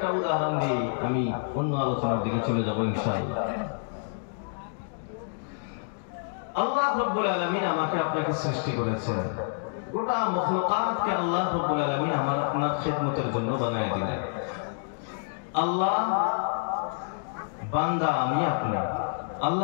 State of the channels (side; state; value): right; silent; digital silence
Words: উদাহরণ দিয়ে আমি অন্য আলোচনার দিকে চলে যাব ইনশাআল্লাহ। আল্লাহ রাব্বুল আলামিন আমাকে আপনাকে সৃষ্টি করেছেন, গোটা মখলুকাতকে আল্লাহ রাব্বুল আলামিন আমার আপনার খেদমতের জন্য বানায় দিলেন। আল্লাহ বান্দা আমি আপনি,